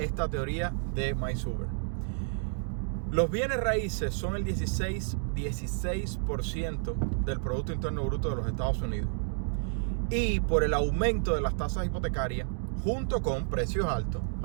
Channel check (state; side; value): silent; left; digital silence